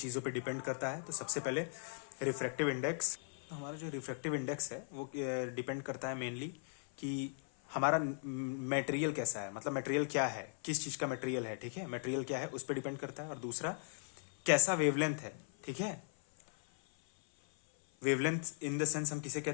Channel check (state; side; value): silent; right; 52 dB below the other